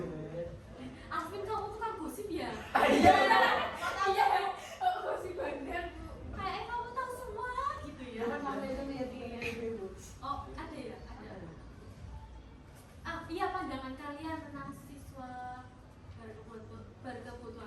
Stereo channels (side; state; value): both; identical; correlation 1.00